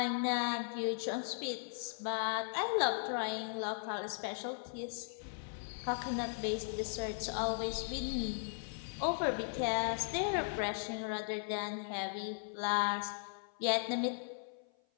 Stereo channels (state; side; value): silent; right; 53 dB below the other